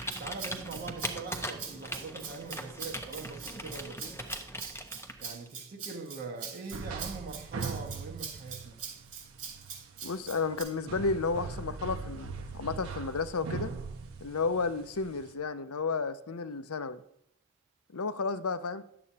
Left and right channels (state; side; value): normal; both; correlation -0.15